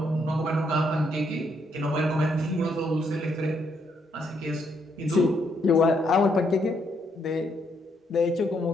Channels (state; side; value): normal; both; correlation 0.74